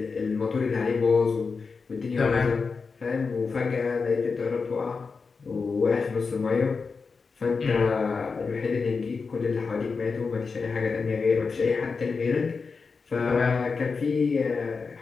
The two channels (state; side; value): quieter; right; 4.8 dB